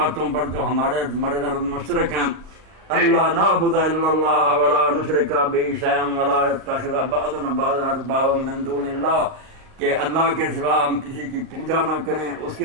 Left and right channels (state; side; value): late; left; 38 ms